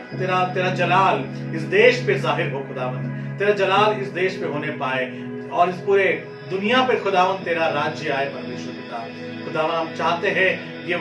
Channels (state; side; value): identical; both; correlation 1.00